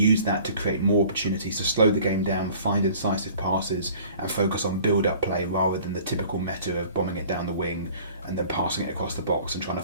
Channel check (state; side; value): inverted; both; correlation -0.49